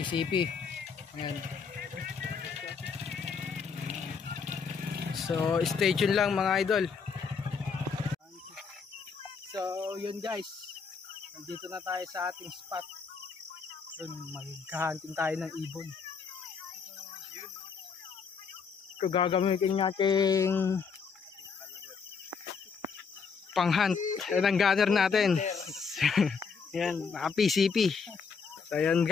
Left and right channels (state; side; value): quieter; right; 5.6 dB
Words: Ayan. So stay tuned lang mga idol. So yun guys, nandito na tayo sa ating spot. Yun, magka-hunting tayo ng ibon. Ito gagamitin nating pang-hunt. Yan ang gunner natin. Yan, mga PCP. So yan